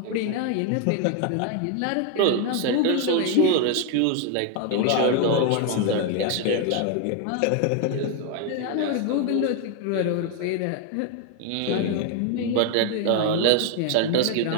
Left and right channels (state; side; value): different; both; correlation 0.01